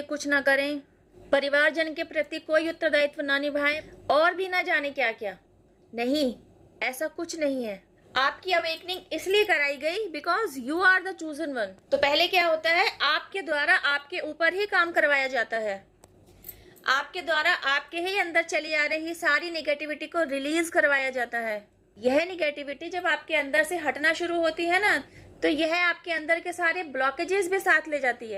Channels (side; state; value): both; identical; correlation 1.00